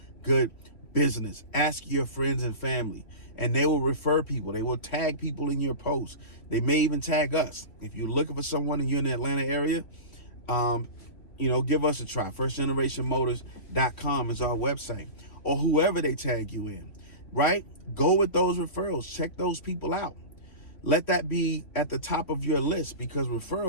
good business? Ask your friends and family, and they will refer people. They will tag people in your posts. They may even tag us. If you're looking for someone and you're in the Atlanta area, give us a try. FirstGenerationMotors.com is our website, or whoever they tag you in, right? Go with those referrals. Check those people out. Let that be at the top of your list, because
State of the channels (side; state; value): right; late; 2.9 ms